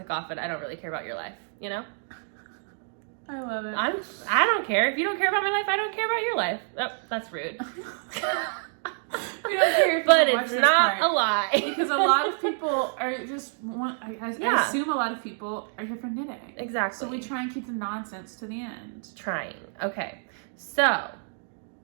off and I don't really care about your life, you know? I love it. I don't care. If you don't care about my life, I don't care about your life. Oh, that's rude. We don't care if But you watch it's this not part. a lie. Because a lot of people are just, I Yeah. assume a lot of people are here for knitting. Exactly. So we try and keep the nonsense to the end. Trying. Okay. So,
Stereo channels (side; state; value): left; silent; 60 dB below the other